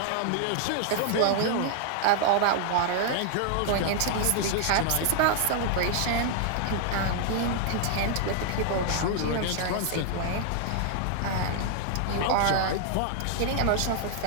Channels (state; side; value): different; both; correlation 0.00